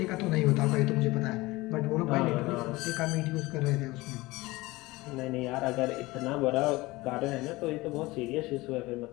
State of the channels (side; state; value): right; quieter; 20.8 dB